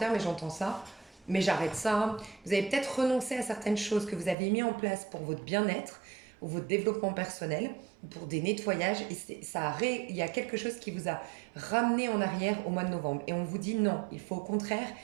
mais j'entends ça, mais j'arrête ça. Vous avez peut-être renoncé à certaines choses que vous avez mis en place pour votre bien-être, ou votre développement personnel, ou pour des nettoyages, et il y a quelque chose qui vous a ramené en arrière au mois de novembre. Et on vous dit non, il faut au contraire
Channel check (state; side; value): drops out; left; at 4.4 s